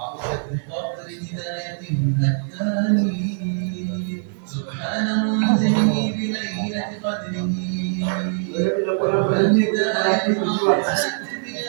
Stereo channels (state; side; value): silent; left; digital silence